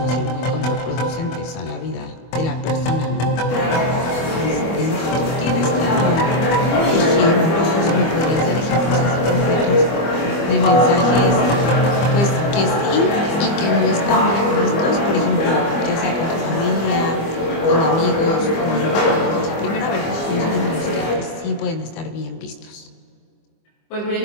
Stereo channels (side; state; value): right; late; 25 ms